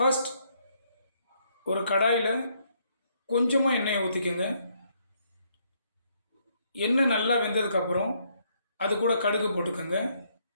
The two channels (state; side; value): inverted; both; correlation -0.71